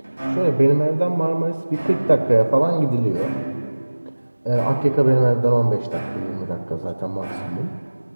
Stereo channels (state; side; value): inverted; both; correlation -1.00